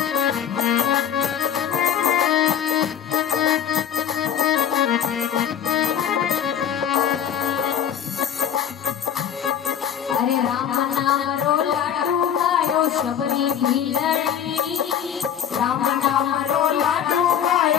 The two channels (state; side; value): quieter; right; 9.0 dB